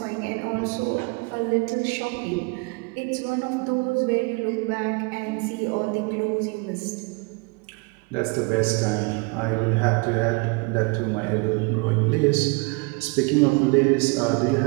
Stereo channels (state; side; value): quieter; left; 29.8 dB